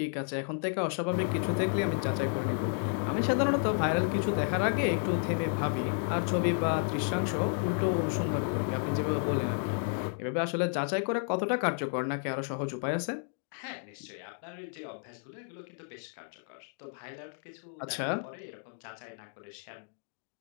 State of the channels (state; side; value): silent; right; 56 dB below the other